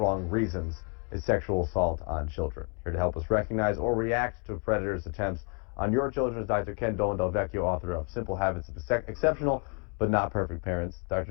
reasons, is sexual assault on children. Here to help us recognize or react to predators' attempts on your children is Dr. Ken Dolan-Del, author of Simple Habits of Exceptional but Not Perfect Parents. Dr.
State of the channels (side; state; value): right; quieter; 35.9 dB